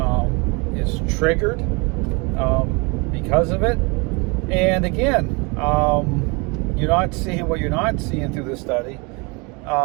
is triggered because of it. And again, you're not seeing what you're not seeing through this study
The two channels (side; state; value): left; quieter; 29.4 dB